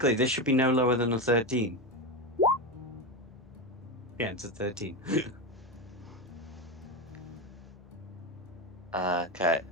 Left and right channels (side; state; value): both; normal; correlation 0.15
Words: this should be no lower than a 13. Yeah, it's a 13. Okay.